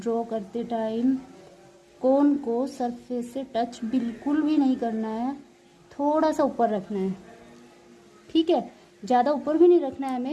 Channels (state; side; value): identical; both; correlation 1.00